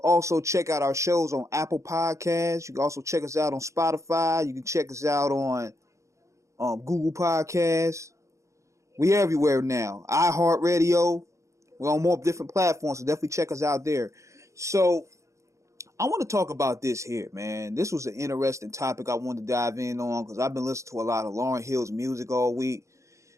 also check out our shows on Apple Podcasts. You can also check us out on Spotify. You can check us out on Google Podcasts. We everywhere now. iHeartRadio. We're on more different platforms, so definitely check us out there. So I want to talk about this here, man. This was an interesting topic I wanted to dive in on because I've been listening to a lot of Lauryn Hill's music all week.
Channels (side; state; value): left; late; 0.15 ms